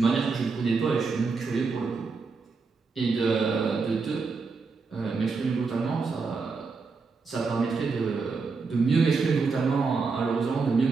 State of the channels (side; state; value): left; quieter; 4.6 dB